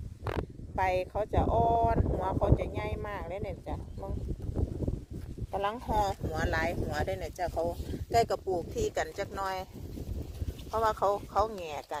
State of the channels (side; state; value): both; identical; correlation 1.00